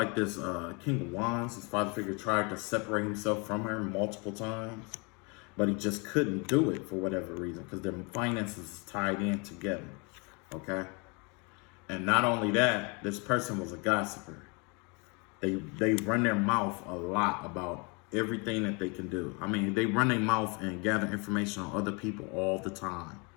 this King of Wands, his father figure, tried to separate himself from her multiple times. But he just couldn't do it for whatever reason, because their finances is tied in together. Okay? And not only that, this person was a gossiper. They run their mouth a lot about everything that they can do. I mean, they run their mouth and gather information on other people all the time.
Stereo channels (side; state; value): right; quieter; 31.3 dB